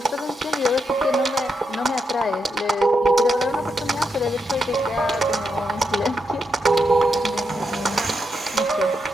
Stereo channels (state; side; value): normal; both; correlation 0.83